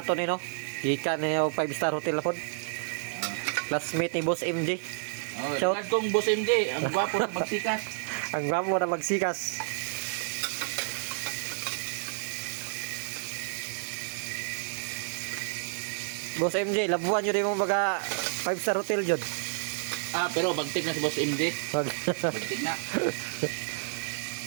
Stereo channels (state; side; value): silent; left; digital silence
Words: to ni no. Gikan na yung 5-star hotel na po. Classmate ni Boss MJ. Oh, Shout. shout kong Boss MJ, ang gwapo na magsikas. Ang gwapo na magsikas. Boss MJ, labuan nyo rin mong mga 5-star hotel dyan. Ah, pero bagtik na si Boss MJ. Wag. Bagtik na.